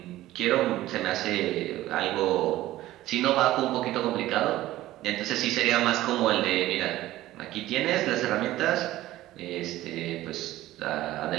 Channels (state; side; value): quieter; left; 15.6 dB